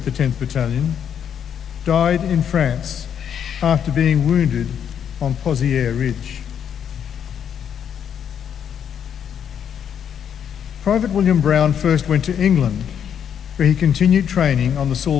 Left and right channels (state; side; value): quieter; right; 8.5 dB